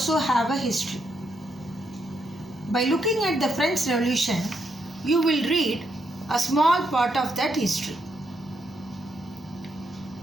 have a history. By looking at the French Revolution, you will read a small part of that history.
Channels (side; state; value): both; normal; correlation 0.78